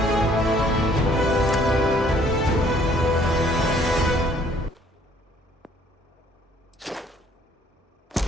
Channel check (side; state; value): both; normal; correlation 0.60